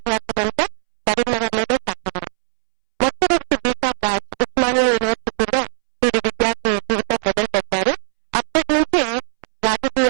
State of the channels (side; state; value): left; silent; 66 dB below the other